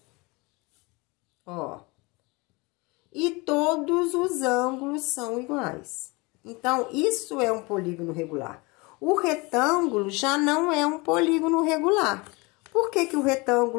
ó, e todos os ângulos são iguais. Então, isso é um polígono regular. O retângulo já não é um polígono regular. Por que que o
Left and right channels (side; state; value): right; quieter; 26.0 dB